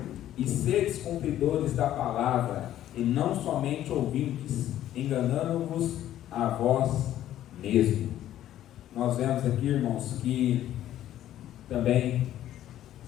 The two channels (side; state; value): right; quieter; 12.4 dB